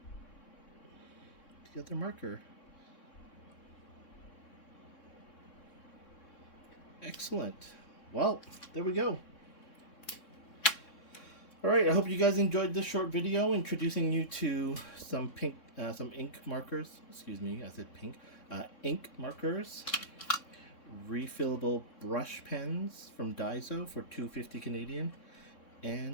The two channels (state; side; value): late; right; 3.6 ms